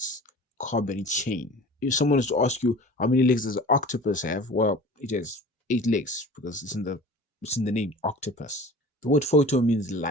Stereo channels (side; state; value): both; normal; correlation 0.41